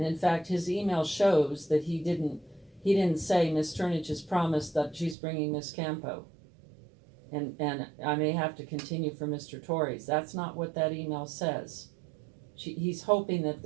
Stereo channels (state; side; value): drops out; left; at 5.2 s